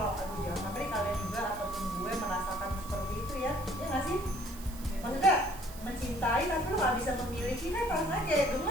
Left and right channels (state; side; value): noise; right; hiss, 16 dB below the sound